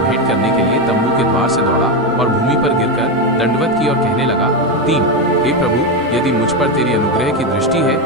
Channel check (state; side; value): normal; both; correlation 0.10